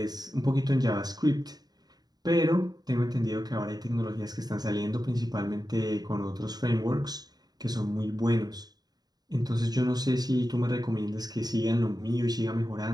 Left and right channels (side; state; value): left; late; 0.19 ms